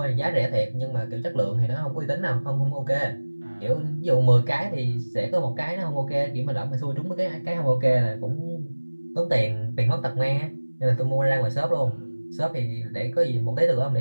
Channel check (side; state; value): both; inverted; correlation -1.00